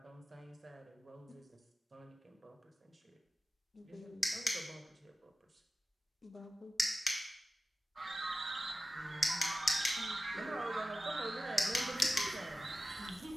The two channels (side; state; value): both; normal; correlation 0.94